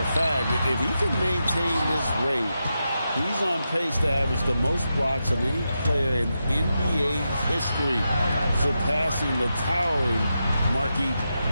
fact, if he can maintain this rate, he's on pace to average the most blocks of any player in NBA history, surpassing the towering Mark Eaton.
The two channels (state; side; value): inverted; both; correlation -0.87